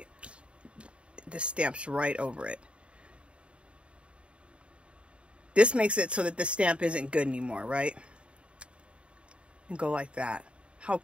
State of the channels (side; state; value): left; late; 0.058 ms